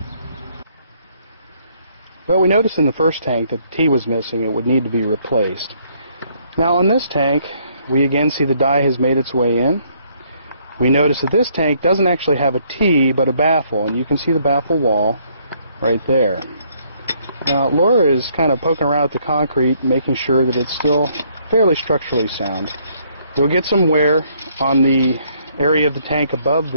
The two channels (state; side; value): inverted; both; correlation -0.67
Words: Well, we noticed in the first tank that the T was missing. It would need to be replaced. Now on this tank, we again see the dye has made its way in. We notice that this tank doesn't actually have a T, but a baffle, and you can see the baffle wall right there. Now Laura is kind of poking around at the concrete, making sure that it's still fairly structurally sound. You'll get some wear on the area of the tank above